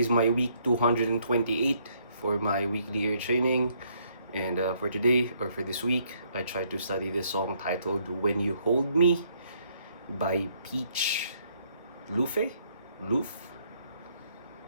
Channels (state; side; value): inverted; both; correlation -0.69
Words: my week 228 for my weekly ear training. And for today, or for this week, I tried to study this song titled When You Hold Me by Peach Luffe? Luffe?